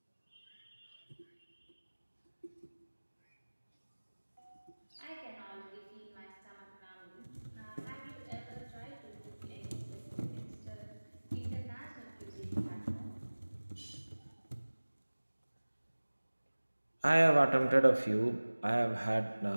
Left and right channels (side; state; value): both; inverted; correlation -1.00